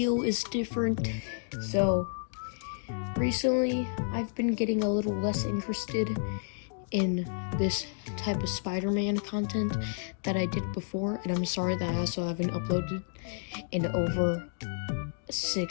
is different. So recently I've been getting a little less interested in this type of Spider-Man content that I did before, and I'm sorry that I also haven't uploaded in over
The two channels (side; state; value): right; silent; digital silence